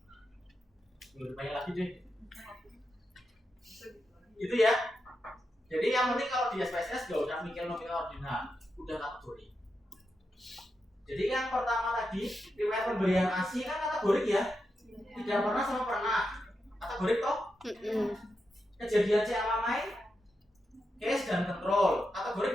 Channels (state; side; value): normal; both; correlation 0.87